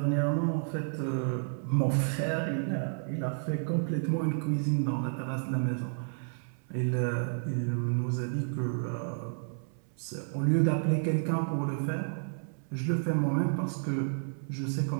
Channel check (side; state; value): left; silent; 57 dB below the other